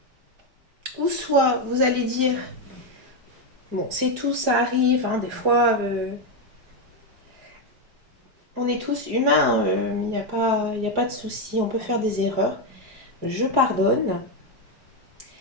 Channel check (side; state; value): left; late; 4.8 ms